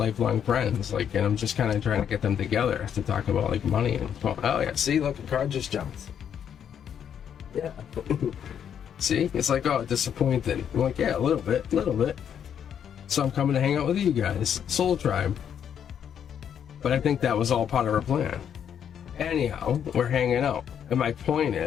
friends, like, and I'm just kind of trying to get them together to talk about, like, money and, oh yeah, see, look, a card just jumped. Yeah. See, it's like, oh, disappointed. I'm like, yeah, a little bit. So I'm coming to hang out with you guys, Soul Tribe. But I think that was all part of our plan. Anyhow, we're hanging out. And my point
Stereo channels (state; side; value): quieter; right; 8.7 dB